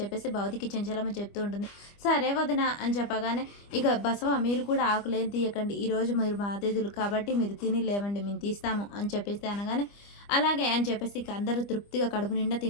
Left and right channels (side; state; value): right; late; 25 ms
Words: చెప్పేసి భవతికి చెంచలమ్మ చెప్తూ ఉంటుంది. సరే వదిన అని చెప్పగానే, ఇక బసవ మీరు కూడా ఆకులేం తీయకండి, ఈరోజు మీరు మా అతిథులు కాబట్టి మీరు తిని లేవండి, మేము తీస్తాము అని చెప్పేసి అనగానే, అలాగే అని చెప్పేసి ఇక అందరూ తృప్తిగా కడుపు నిండా